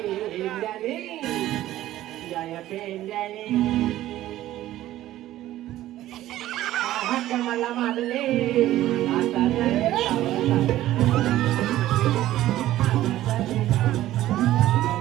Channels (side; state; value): left; quieter; 14.3 dB